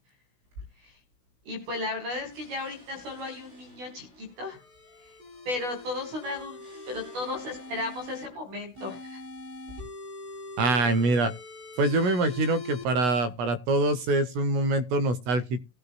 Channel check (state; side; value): late; left; 16 ms